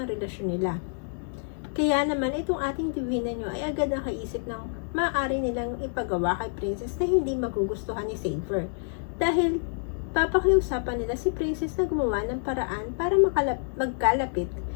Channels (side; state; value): right; silent; 60 dB below the other